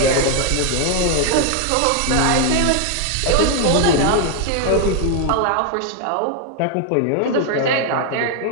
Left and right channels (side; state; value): both; different; correlation 0.00